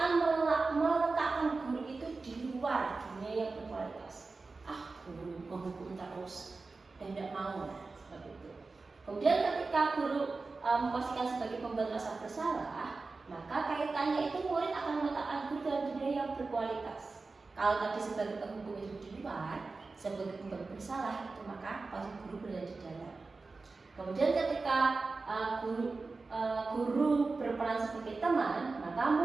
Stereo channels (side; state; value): left; quieter; 3.9 dB